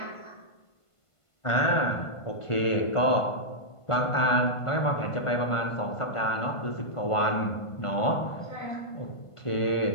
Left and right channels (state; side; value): late; right; 1.5 ms